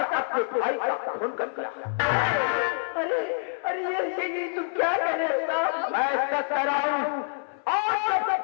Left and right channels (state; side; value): silent; right; 60 dB below the other